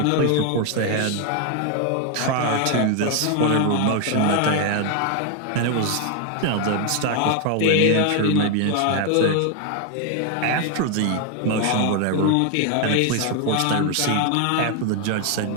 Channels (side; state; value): both; different; correlation 0.01